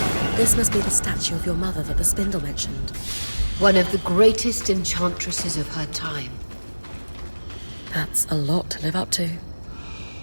this must be the statue of your mother that the spindle mentioned. One of the greatest enchantresses of her time. That's a lot to live up to.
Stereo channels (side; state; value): both; inverted; correlation -1.00